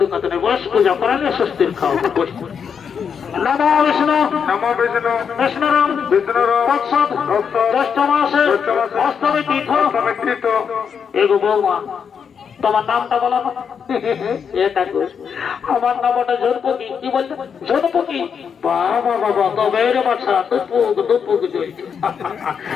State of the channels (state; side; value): quieter; right; 6.9 dB